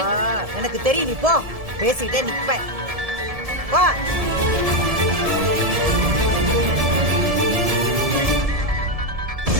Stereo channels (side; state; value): left; late; 1.7 ms